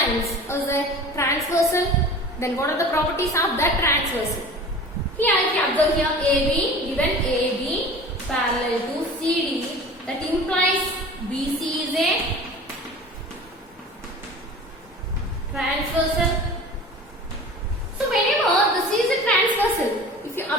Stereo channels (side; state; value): both; normal; correlation 0.39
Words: is a transversal. Then what are the properties of that transversal? Here if you observe here AB, given AB parallel to CD, that implies BC is a transversal. So whenever the C is a transversal, if you